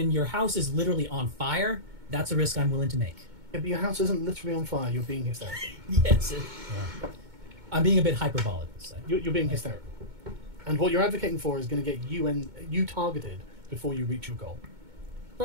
your house is literally on fire, that's a risk I'm willing to make. Yeah, but your house isn't literally on fire. You're being hysterical. Yes. I'm being a bit hyperbolic. So. You're being hysterical. And what you're advocating for is going to get you targeted before you reach your goal.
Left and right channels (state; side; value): late; left; 2.2 ms